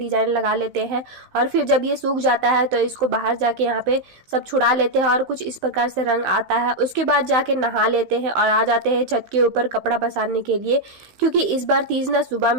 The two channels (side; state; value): left; late; 15 ms